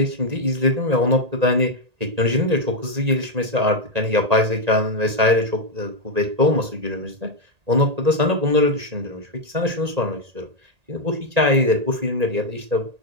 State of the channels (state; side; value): late; left; 1.8 ms